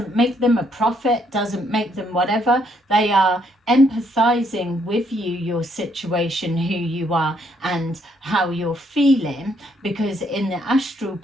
make them a prophet, doesn't make them whatever. They are empathizing with you, your situation, who you are, and how you're feeling, because in the astral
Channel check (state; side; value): normal; both; correlation 0.71